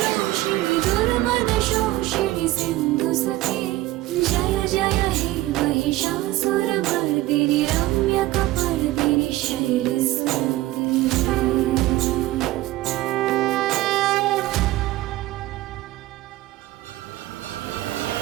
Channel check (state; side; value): quieter; left; 17.0 dB